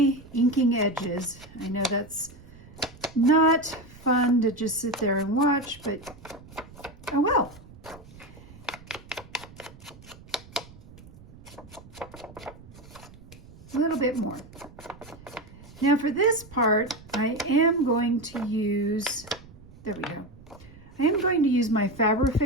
inking edges. I know that's not fun to just sit there and watch, but oh well. A little bit more. Now for this part, I am going to use, there we go. I am going to use my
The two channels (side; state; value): right; noise; rumble, 20 dB below the sound